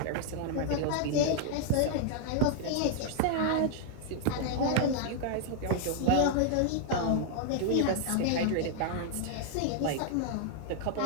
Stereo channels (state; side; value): different; both; correlation -0.01